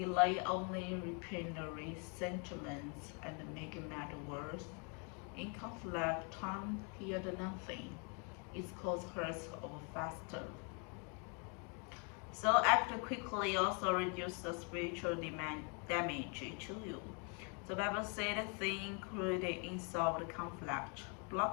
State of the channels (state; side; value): quieter; right; 36.6 dB